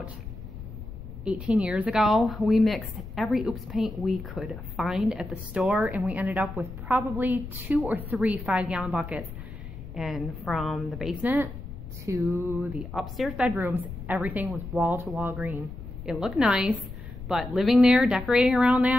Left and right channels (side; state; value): left; noise; rumble, 11 dB below the sound